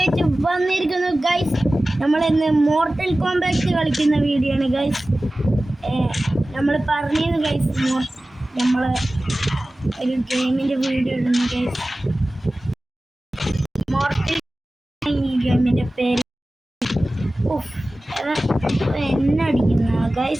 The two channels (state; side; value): normal; both; correlation 0.97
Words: ആയിട്ട് വന്നിരിക്കുന്നു ഗൈസ്. നമ്മളിന്ന് മോർട്ടൽ കോംബാറ്റ് കളിക്കുന്ന വീഡിയോ ആണ് ഗൈസ്. നമ്മൾ പറഞ്ഞിരുന്നു ഗൈസ്, നമ്മൾ ഒരു ഗെയിമിൻ്റെ വീഡിയോ ഇടുന്നു ഗൈസ്. മോർട്ടൽ ഈ ഗെയിമിൻ്റെ പേര് എന്നെ അടിക്കുന്ന